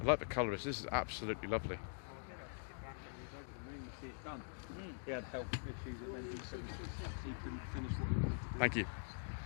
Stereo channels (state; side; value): silent; right; digital silence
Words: I like the colour. This is absolutely lovely. He had health issues that meant he couldn't finish what he wanted to do. Thank you.